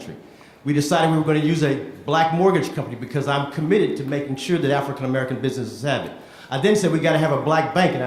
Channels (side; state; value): both; identical; correlation 1.00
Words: We decided we were going to use a Black mortgage company because I'm committed to making sure that African American businesses have it. I then said we got to have a black bank, and